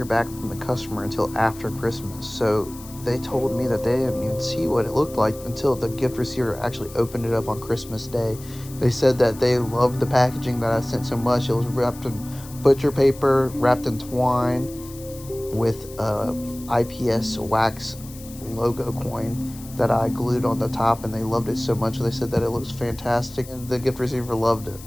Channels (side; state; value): left; noise; hiss, 18 dB below the sound